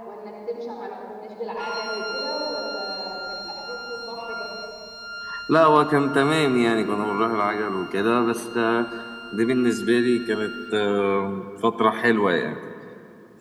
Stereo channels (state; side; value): identical; both; correlation 1.00